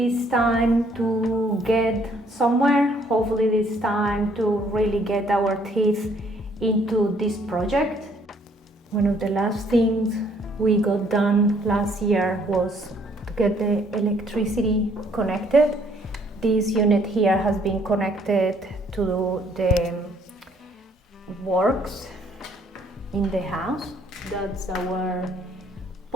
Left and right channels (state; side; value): normal; both; correlation 0.64